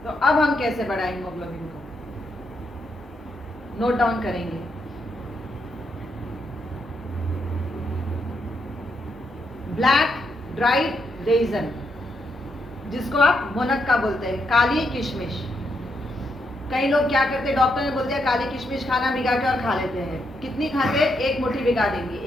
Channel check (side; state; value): both; normal; correlation 0.80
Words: तो अब हम कैसे बढ़ाएं हीमोग्लोबिन को, नोट डाउन करेंगे। ब्लैक ड्राइड रेजन, जिसको आप मुनक्का बोलते हैं, काली किशमिश। कई लोग क्या करते हैं, डॉक्टर ने बोल दिया काली किशमिश खाना, भिगा के और खा लेते हैं। कितनी खाते हैं? 1 मुट्ठी भिगा देंगे